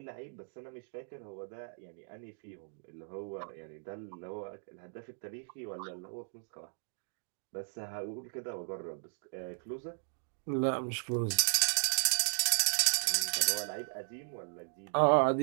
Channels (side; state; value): left; silent; digital silence